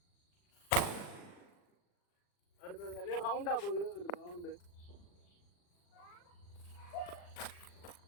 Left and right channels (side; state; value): right; late; 40 ms